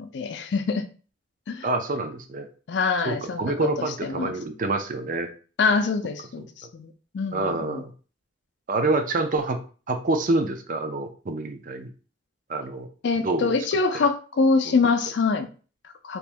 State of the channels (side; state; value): both; normal; correlation 0.25